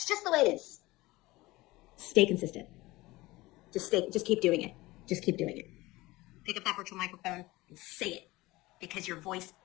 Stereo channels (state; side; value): quieter; right; 20.1 dB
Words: just the way it is. Stay consistent. Just keep doing it. Just keep doing it. Pick up that virtual microphone and say it, because your voice